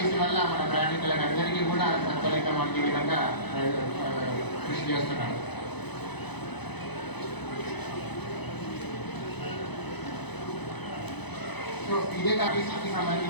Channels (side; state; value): right; late; 0.99 ms